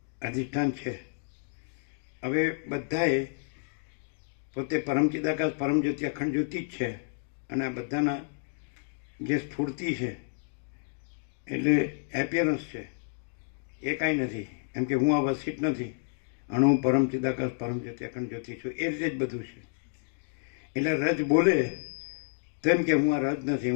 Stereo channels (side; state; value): right; silent; digital silence